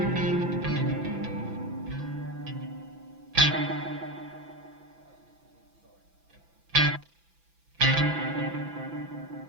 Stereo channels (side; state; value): left; late; 6.0 ms